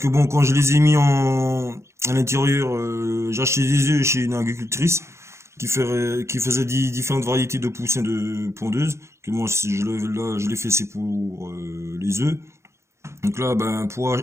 bon, quand je les ai mis à l'intérieur, j'ai acheté des œufs chez une agricultrice qui faisait différentes variétés de poussins de pondeuses. Que moi, là, je l'ai fait, c'est pour les œufs. Donc là, ben, pour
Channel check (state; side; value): late; left; 0.13 ms